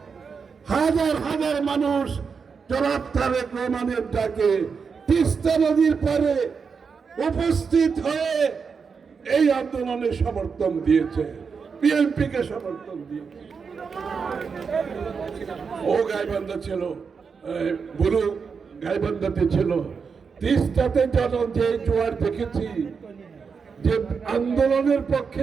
হাজার হাজার মানুষ জনাব তারেক রহমানের ডাকে তিস্তা নদীর পাড়ে উপস্থিত হয়ে এই আন্দোলনে সমর্থন দিয়েছে, বিএনপিকে সমর্থন দিয়েছে। ও গাইবান্ধা ছিল, বুড়ো গাইবান্ধাতে ছিল। তিস্তাতে যে জোয়ার দেখেছি, যে আন্দোলনের পক্ষে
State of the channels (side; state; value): left; quieter; 5.7 dB